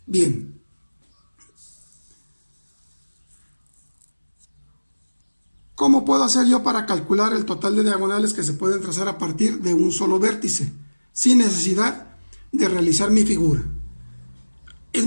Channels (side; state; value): both; inverted; correlation -1.00